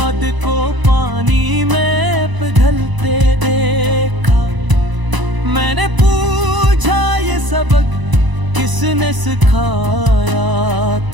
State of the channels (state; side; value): late; left; 1.0 ms